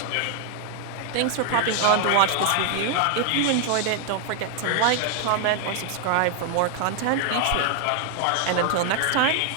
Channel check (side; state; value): both; different; correlation 0.00